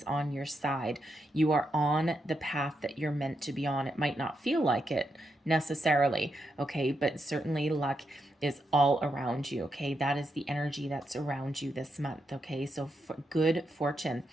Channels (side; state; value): both; normal; correlation 0.83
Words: on your side. You are on the path that you're meant to be on. It might not feel like it necessarily, okay, but certainly luck is all around you. Okay, that is the energy that's around you this month. Okay, so good fortune.